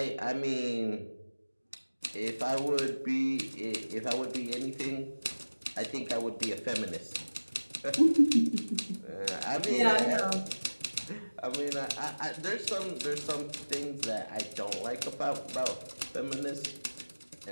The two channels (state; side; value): inverted; both; correlation -1.00